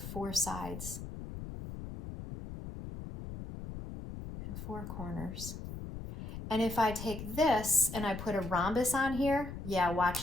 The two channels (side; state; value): left; noise; rumble, 9 dB below the sound